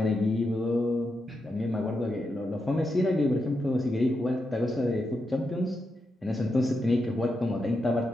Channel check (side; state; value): both; normal; correlation 0.85